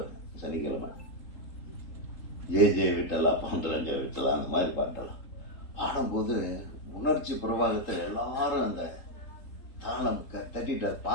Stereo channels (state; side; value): late; right; 3.8 ms